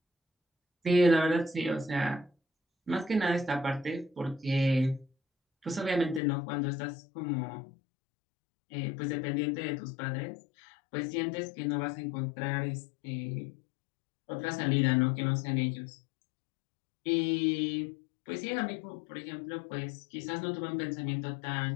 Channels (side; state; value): right; drops out; at 6.2 s